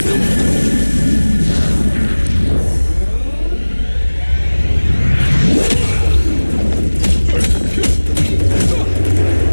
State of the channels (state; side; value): inverted; both; correlation -1.00